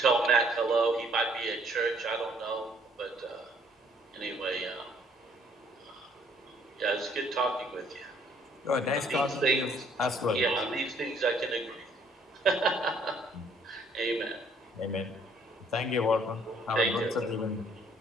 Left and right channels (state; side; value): normal; both; correlation 0.62